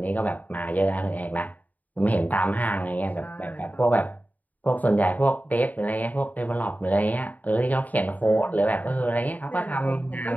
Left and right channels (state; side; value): late; right; 0.077 ms